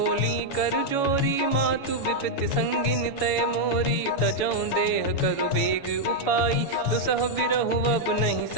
कर जोरी, मातु विपत्ति संगिन तय मोरी। तजौ देह करु बेग उपाई, दुसह बिरहु अब नहीं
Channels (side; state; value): right; late; 7.1 ms